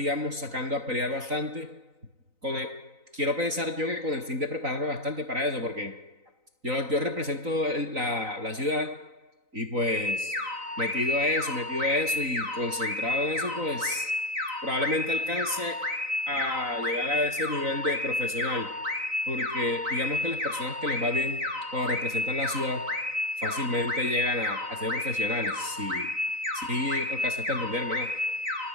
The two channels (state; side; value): late; left; 3.9 ms